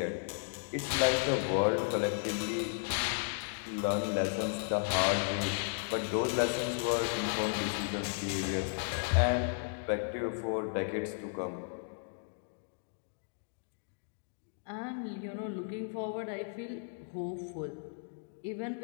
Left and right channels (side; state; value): right; silent; digital silence